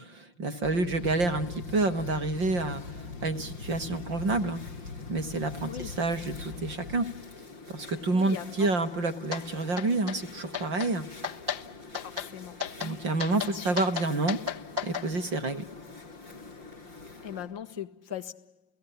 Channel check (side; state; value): left; late; 5.7 ms